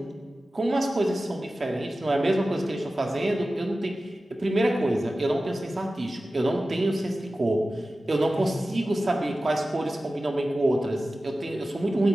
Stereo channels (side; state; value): both; normal; correlation 0.95